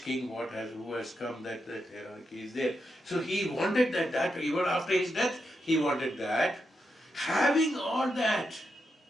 king, who has come, that hierarchy is there. So he wanted that, even after his death, he wanted that. Having all that,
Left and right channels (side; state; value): both; normal; correlation 0.85